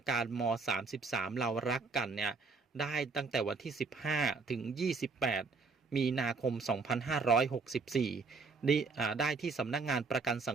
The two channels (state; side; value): quieter; left; 4.3 dB